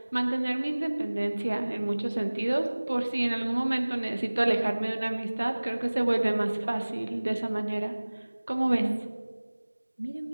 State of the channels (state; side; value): inverted; both; correlation -1.00